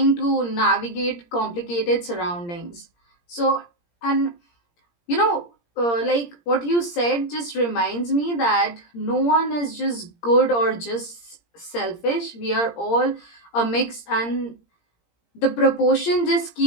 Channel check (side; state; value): right; late; 17 ms